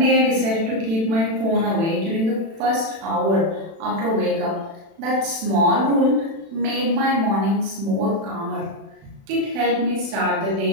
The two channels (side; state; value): left; late; 36 ms